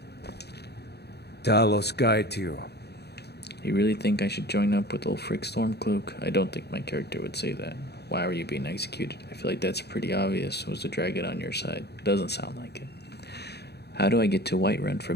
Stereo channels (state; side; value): late; right; 0.48 ms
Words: Talos guide you. You really think I should join up with Ulfric Stormcloak? I don't think my character would say that. Why were you being executed? I feel like that's pretty obvious. Was the dragon on your side? Doesn't sound like it. How do I get to Whiterun